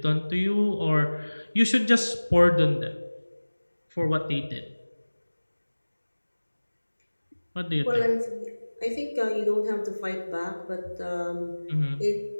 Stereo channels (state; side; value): inverted; both; correlation -1.00